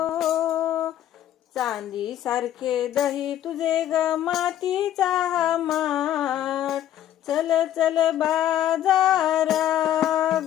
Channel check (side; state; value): right; quieter; 11.5 dB